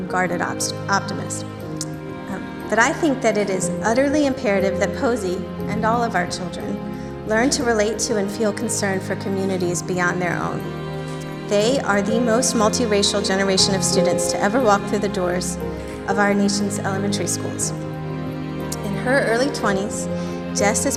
guarded optimist. But I think that it is utterly imperative that Posey and all of our children learn to relate to and feel concern for communities beyond their own. They are the most multiracial generation of students to ever walk through the doors of our nation's elementary schools. In her early 20s, just as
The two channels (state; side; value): identical; both; correlation 1.00